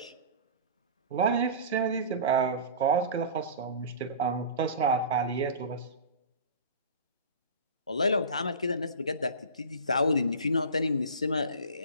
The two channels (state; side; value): inverted; both; correlation -0.35